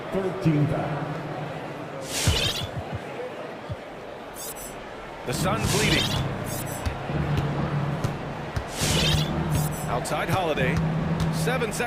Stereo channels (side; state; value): both; identical; correlation 1.00